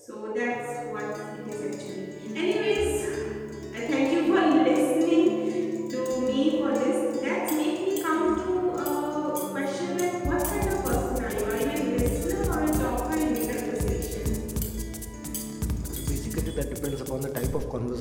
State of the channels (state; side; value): identical; both; correlation 1.00